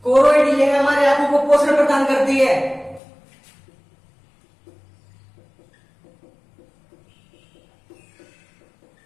कोरोइड ये हमारे आंखों को पोषण प्रदान करती है।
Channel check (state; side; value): drops out; right; at 3.0 s